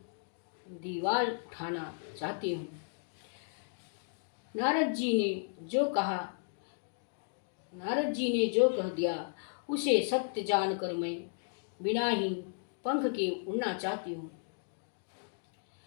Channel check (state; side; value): silent; right; digital silence